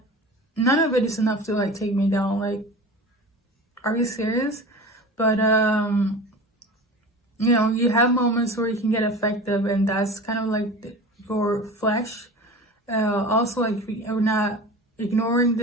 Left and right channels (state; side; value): normal; both; correlation 0.35